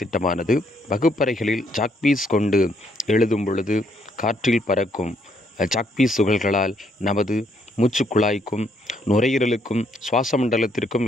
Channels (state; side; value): normal; both; correlation 0.71